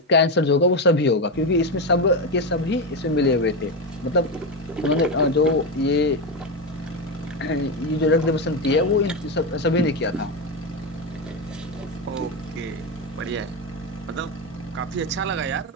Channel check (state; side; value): normal; both; correlation 0.12